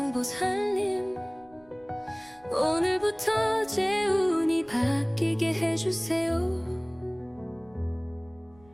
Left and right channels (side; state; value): right; noise; rumble, 28 dB below the sound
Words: 오늘부터 제 운이 바뀌게 해주세요.